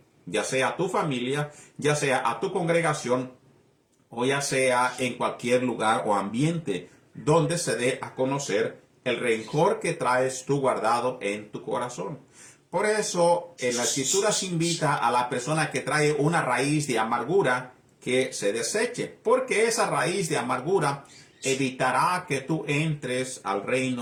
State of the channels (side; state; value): both; identical; correlation 1.00